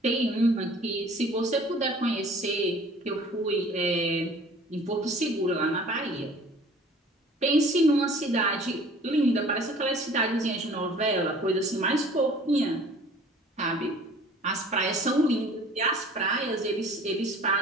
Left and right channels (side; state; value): both; normal; correlation 0.49